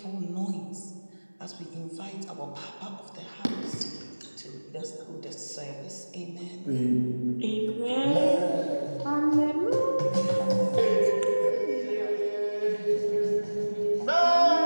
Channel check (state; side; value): inverted; both; correlation -1.00